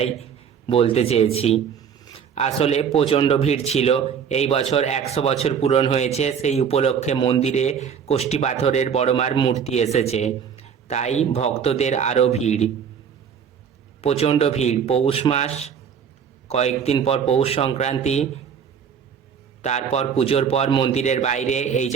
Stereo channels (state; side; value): quieter; left; 7.3 dB